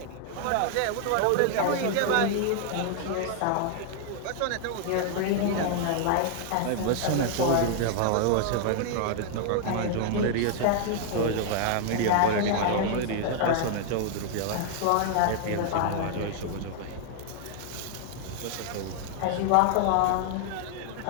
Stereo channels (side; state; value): both; different; correlation 0.00